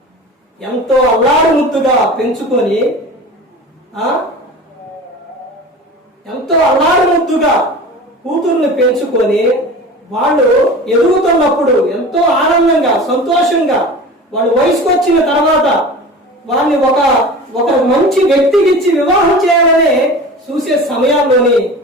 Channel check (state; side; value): normal; both; correlation 0.36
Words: ఎంతో అల్లారు ముద్దుగా పెంచుకొని ఎంతో అల్లారు ముద్దుగా కూతుర్ని పెంచుకొని వాళ్ళు ఎదుగుతున్నప్పుడు ఎంతో ఆనందంగా, సంతోషంగా వాళ్ళు వయసుకు వచ్చిన తర్వాత వాళ్ళని ఒక మంచి వ్యక్తికి ఇచ్చి వివాహం చేయాలని చూసే సమయాల్లోని